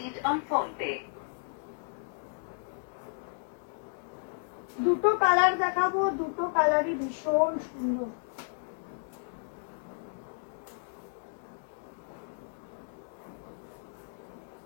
on phone pay. দুটো কালার দেখাবো, দুটো কালারই ভীষণ সুন্দর।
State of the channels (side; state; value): right; silent; digital silence